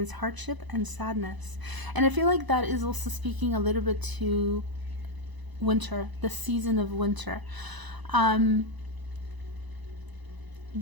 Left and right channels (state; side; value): late; left; 1.0 ms